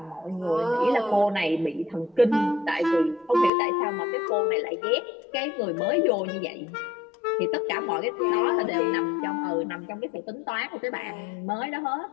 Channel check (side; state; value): right; drops out; at 3.5 s